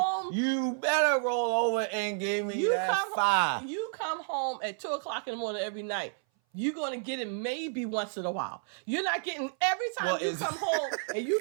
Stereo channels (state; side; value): silent; left; 57 dB below the other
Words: you better roll over and give me that 5. You come home at 2:00 in the morning every night. You're going to get it maybe once in a while. You're not getting every time you come home and you